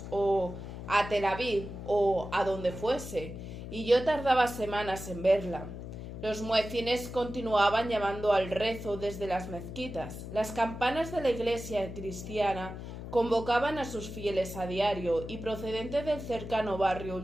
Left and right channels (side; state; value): left; noise; hum, 9 dB below the sound